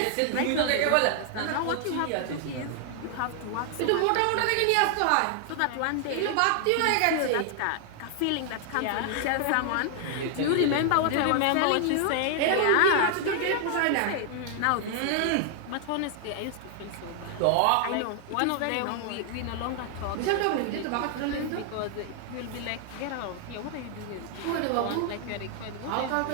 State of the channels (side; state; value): both; different; correlation 0.00